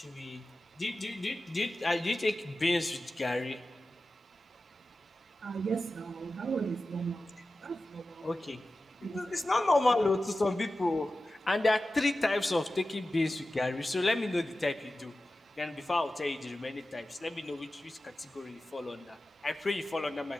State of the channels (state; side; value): normal; both; correlation 0.94